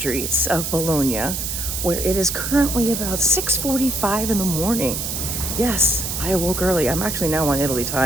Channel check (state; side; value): noise; right; hiss, 3 dB below the sound